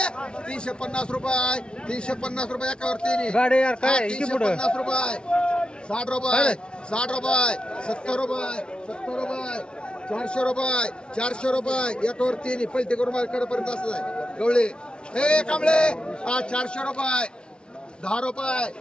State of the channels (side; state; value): right; late; 0.055 ms